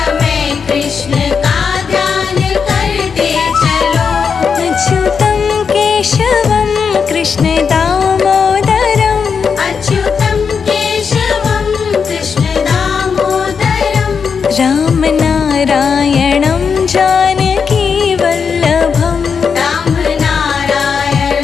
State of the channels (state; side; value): quieter; right; 6.1 dB